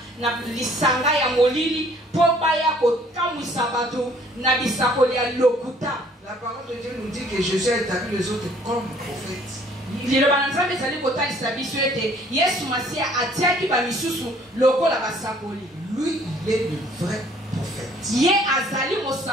na lisanga ya molili po baya kokamwisa bato na bisakoli ya lokuta. La parole de Dieu nous dit que Jésus a établi les autres comme prophètes. Liloba nzambe ezali kotalisa biso ete Yesu Masia atiaki bamisusu lokola basakoli. Lui, il est le vrai prophète. Ye azali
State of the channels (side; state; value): both; normal; correlation 0.58